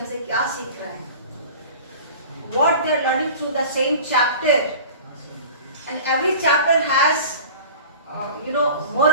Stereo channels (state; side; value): inverted; both; correlation -0.40